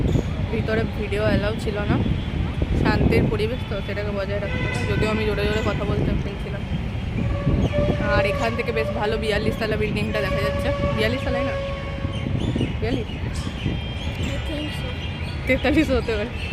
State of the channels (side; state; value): both; identical; correlation 1.00